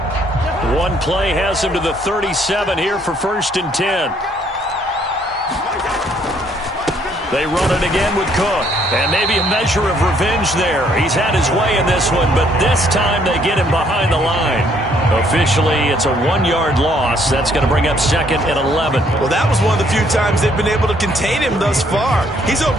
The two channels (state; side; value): normal; both; correlation 0.66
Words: One play has him to the 37 here for 1st and 10. They run it again with Cook. And maybe a measure of revenge there. He's had his way in this one, but this time they get him behind the line. Officially, it's a 1-yard loss. That's going to bring up 2nd and 11. Well, that was one of the few times they've been able to contain him thus far. He's